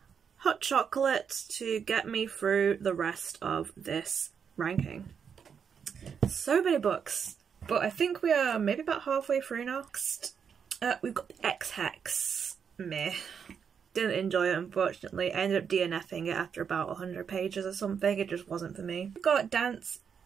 hot chocolate to get me through the rest of this ranking. So many books, but I think we are maybe about halfway through now. Next, we've got the X-Hex. Meh. Didn't enjoy it, unfortunately. I ended up DNFing it after about 100 pages or something. It just wasn't for me. We've got Dance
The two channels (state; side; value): quieter; left; 7.0 dB